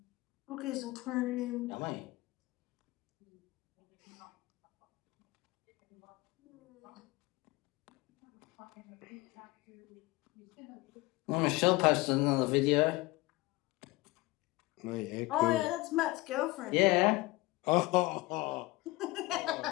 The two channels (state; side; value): quieter; right; 20.8 dB